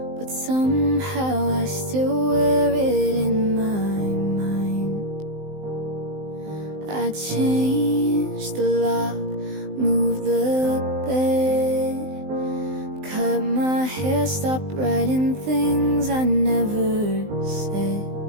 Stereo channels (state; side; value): late; left; 19 ms